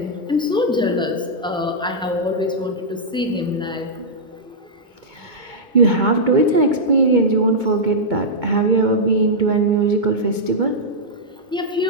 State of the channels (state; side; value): normal; both; correlation -0.08